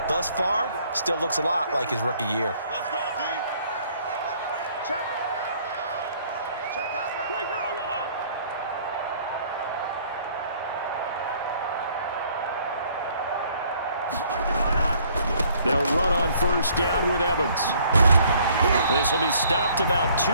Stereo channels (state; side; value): inverted; both; correlation -0.60